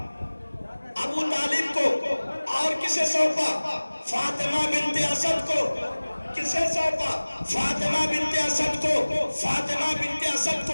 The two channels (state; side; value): inverted; both; correlation -1.00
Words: ابو طالب کو۔ اور کسے سونپا؟ فاطمہ بنت اسد کو۔ کسے سونپا؟ فاطمہ بنت اسد کو۔ فاطمہ بنت اسد